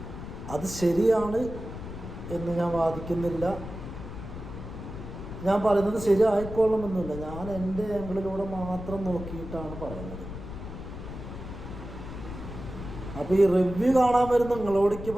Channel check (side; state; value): left; noise; rumble, 10 dB below the sound